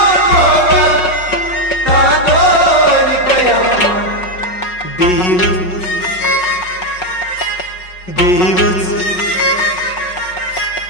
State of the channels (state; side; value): late; right; 5.4 ms